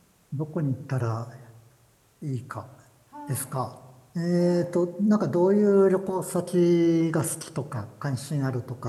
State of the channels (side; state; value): both; identical; correlation 1.00